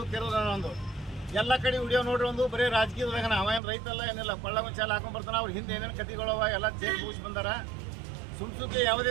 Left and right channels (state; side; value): drops out; left; at 3.6 s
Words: ಕೆರೂರು ಒಂದು ಎಲ್ಲ ಕಡೆ ವಿಡಿಯೋ ನೋಡ್ರಿ, ಒಂದು ಬರೀ ರಾಜಕೀಯದಾಗ ಅವ ಏನು ರೈತಲ್ಲ ಏನಿಲ್ಲ, ಕೊಳ್ಳ ಚಾಲ ಹಾಕೊಂಡ್ ಬರ್ತಾನೆ. ಅವ್ರ ಹಿಂದೆ ಏನೇನು ಕತಿಗಳವ ಎಲ್ಲ ಚೇಕ್ ಮುಗಿಸಿ ಬಂದಾರ. ಸುಮ್ಸುಕ್ಕೆ ಯಾವುದೇ